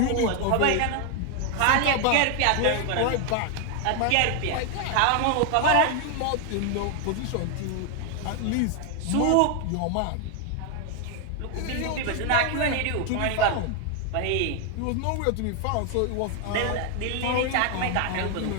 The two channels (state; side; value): different; both; correlation 0.00